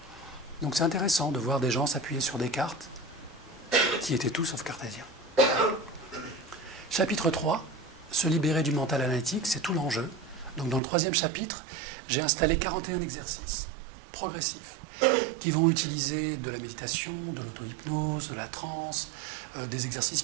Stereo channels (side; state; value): left; drops out; at 10.8 s